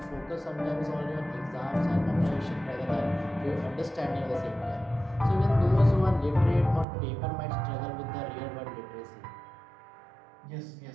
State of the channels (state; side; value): drops out; left; at 6.9 s